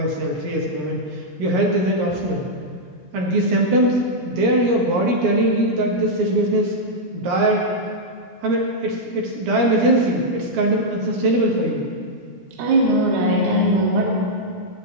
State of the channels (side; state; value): left; late; 17 ms